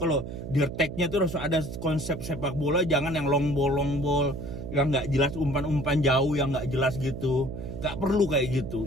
di attack-nya tuh harus ada konsep sepak bola, jangan yang long ball yang nggak jelas, umpan jauh yang nggak jelas gitu. Nggak perlu kayak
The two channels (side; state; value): right; noise; hum, 8 dB below the sound